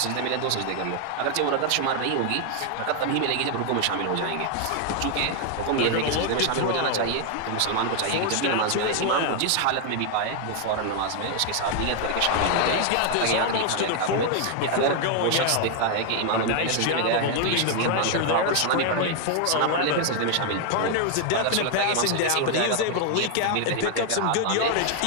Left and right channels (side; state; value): both; different; correlation 0.00